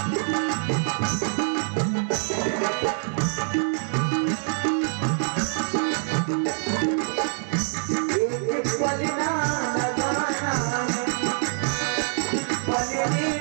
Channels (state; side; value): silent; left; digital silence